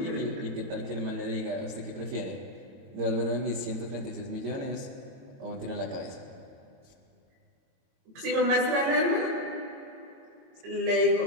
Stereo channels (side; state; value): left; late; 22 ms